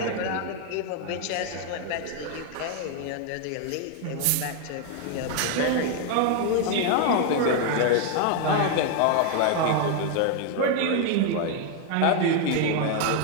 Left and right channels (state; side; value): different; both; correlation 0.01